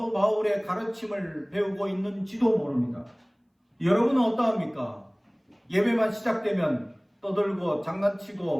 바울의 가르침을 배우고 있는지도 모릅니다. 여러분은 어떠합니까? 예배만 시작되면 떠들고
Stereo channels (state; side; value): identical; both; correlation 1.00